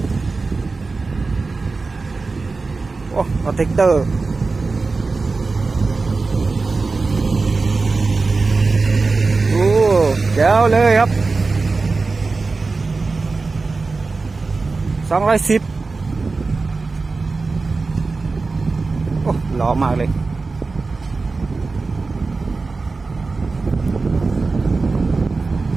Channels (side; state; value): left; quieter; 4.0 dB